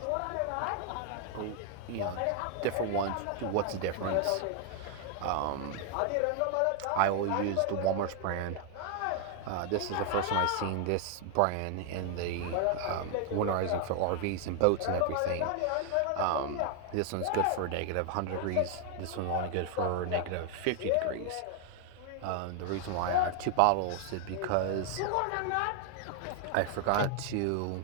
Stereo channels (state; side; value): different; both; correlation 0.00